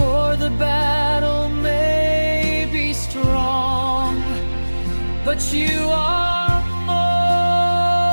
the battle may be strong, but you are more.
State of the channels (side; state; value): both; inverted; correlation -1.00